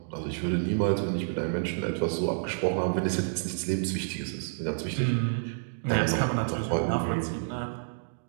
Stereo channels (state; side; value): silent; left; digital silence